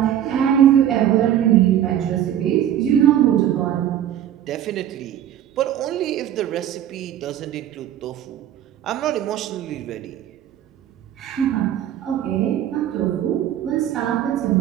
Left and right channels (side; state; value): left; quieter; 10.9 dB